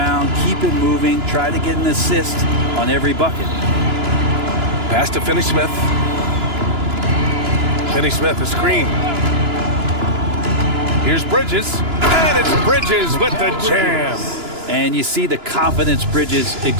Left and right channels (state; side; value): late; left; 2.9 ms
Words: keep it moving, try to get an assist on every bucket. Pass to Finney-Smith. Finney-Smith, a screen. Here's Bridges. And it's Bridges with the jam. And you see the confidence Bridges